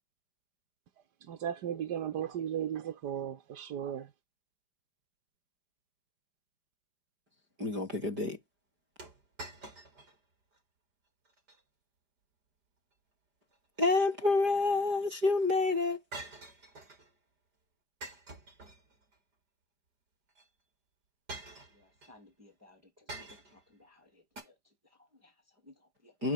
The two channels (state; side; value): late; left; 5.0 ms